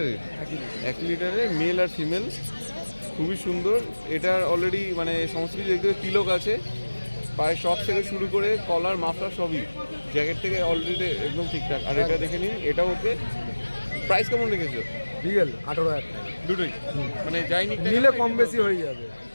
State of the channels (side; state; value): both; inverted; correlation -1.00